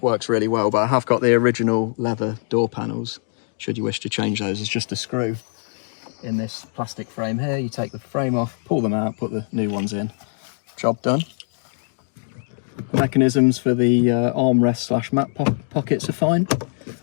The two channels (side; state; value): right; silent; digital silence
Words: works really well, but I have got the original leather door panels, should you wish to change those. It's just a screw in this plastic frame here. You take the frame off, pull them out, put the new ones in. Job done. The mechanisms for the armrest / mat pockets are fine.